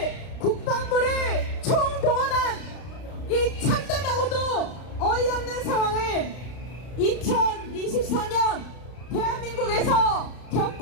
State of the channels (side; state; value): right; late; 32 ms